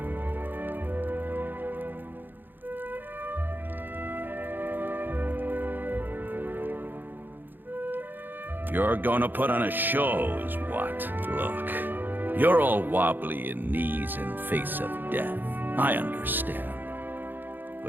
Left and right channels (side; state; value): left; late; 0.091 ms